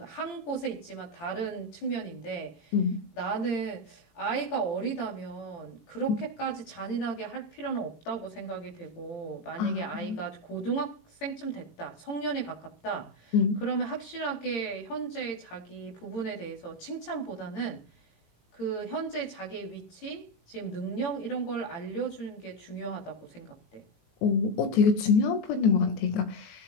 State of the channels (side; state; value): right; late; 18 ms